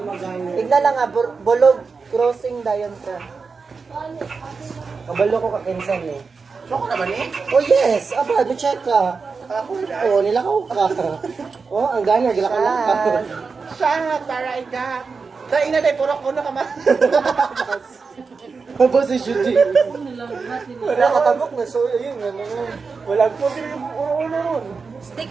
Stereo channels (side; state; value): left; quieter; 4.8 dB